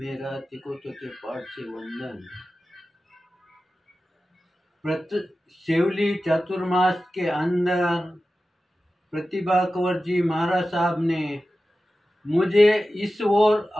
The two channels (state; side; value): normal; both; correlation 0.94